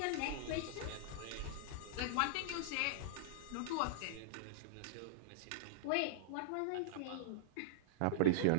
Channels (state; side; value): different; both; correlation -0.02